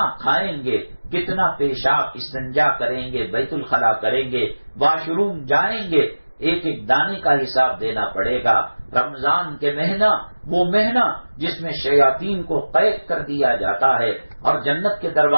کھائیں گے، کتنا پیشاب استنجا کریں گے، بیت الخلا کریں گے، واش روم جائیں گے، ایک ایک دانے کا حساب دینا پڑے گا۔ رمضان کے مہینہ، وہ مہینہ جس میں شیاطین کو قید کر دیا جاتا ہے اور جنت کے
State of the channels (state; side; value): inverted; both; correlation -1.00